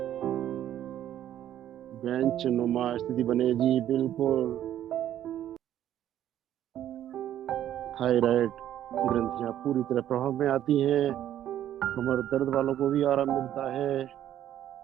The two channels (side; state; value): left; quieter; 11.5 dB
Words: बेंच नुमा स्थिति बने जी बिल्कुल। थायराइड ग्रंथियां पूरी तरह प्रभाव में आती हैं। कमर दर्द वालों को भी आराम मिलता है।